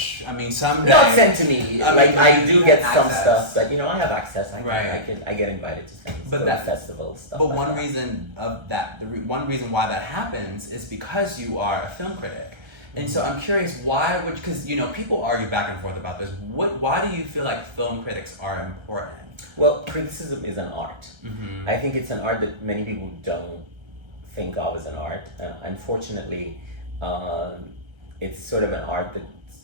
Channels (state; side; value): late; left; 1.3 ms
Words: someday. Not sent to me. I do get some access. stuff, but I have access. I get invited to things. But that festival stuff. But like one that. reason of that, one reason why that happens is because you are a film critic. And so I'm curious, because people argue back and forth about this. Why do you feel like film critics are important? Well, criticism is an art. I think it's an art that many people don't think of as an art. Unfortunately, it's sort of an art that